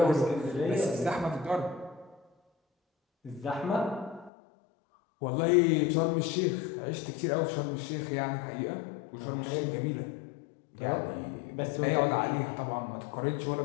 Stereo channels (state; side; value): drops out; right; at 4.3 s